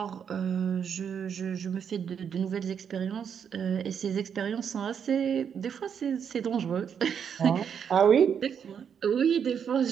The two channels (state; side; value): quieter; left; 7.6 dB